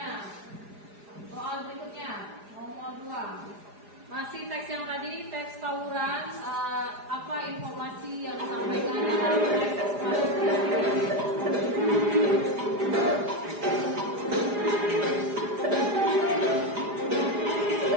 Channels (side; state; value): left; late; 4.9 ms